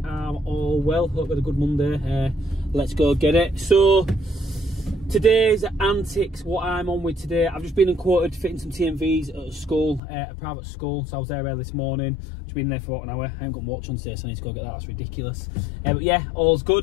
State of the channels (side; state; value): right; drops out; at 10.0 s